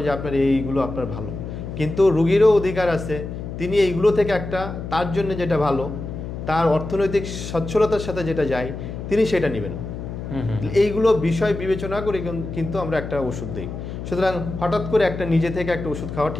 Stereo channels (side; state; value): left; noise; hum, 8 dB below the sound